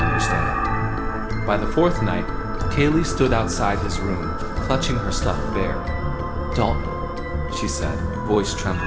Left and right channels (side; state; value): both; identical; correlation 1.00